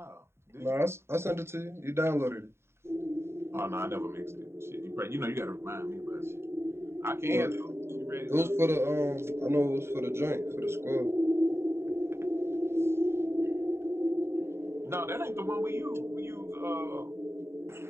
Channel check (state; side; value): late; left; 0.12 ms